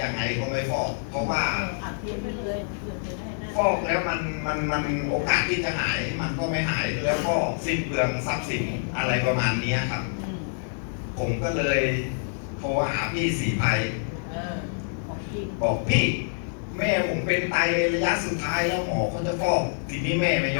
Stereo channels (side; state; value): right; silent; 58 dB below the other